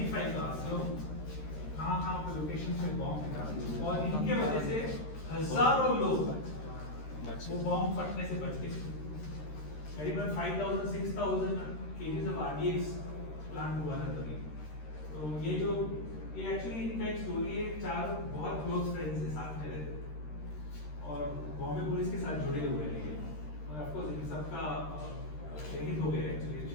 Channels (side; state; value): right; late; 13 ms